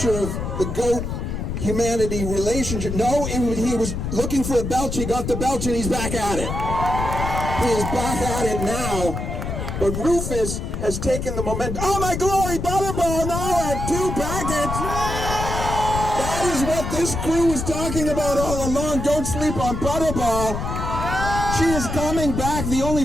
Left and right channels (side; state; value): left; noise; rumble, 4 dB below the sound